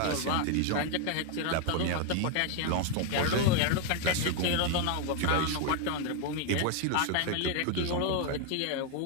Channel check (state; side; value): different; both; correlation 0.01